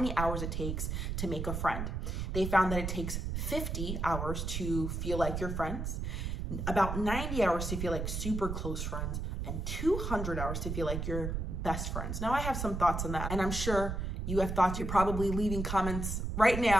hours it takes to make a friend. They found that it takes 50 hours to feel like your friends, about 90 hours to feel like super close friends, and 200 hours to feel like your best friends. Now, I have some thoughts on that, and I'm sure You have thoughts. You're probably leaving comments right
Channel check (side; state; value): right; noise; rumble, 3 dB below the sound